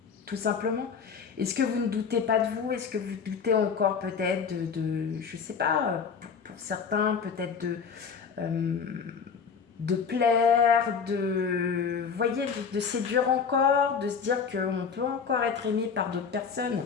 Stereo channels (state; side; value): quieter; right; 6.1 dB